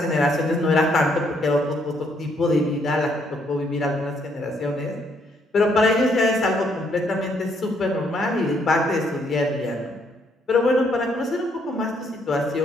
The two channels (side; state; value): both; normal; correlation 0.71